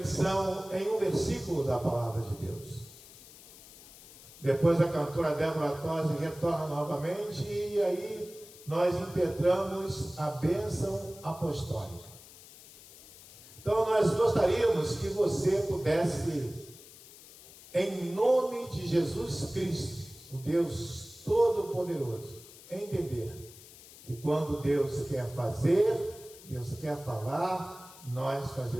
em um versículo da palavra de Deus. Depois a cantora Débora Tosi retorna novamente e aí nós impetramos a bênção apostólica. Então nós gostaríamos que você pudesse, em nome de Jesus Cristo, o Deus Todo-Poderoso, entender que quando Deus quer fazer, Deus quer falar, nós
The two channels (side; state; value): left; noise; hiss, 19 dB below the sound